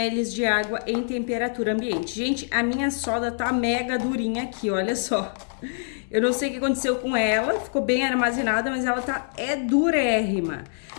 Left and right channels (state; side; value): silent; right; digital silence